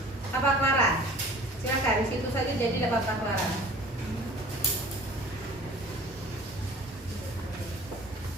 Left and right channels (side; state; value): both; normal; correlation 0.46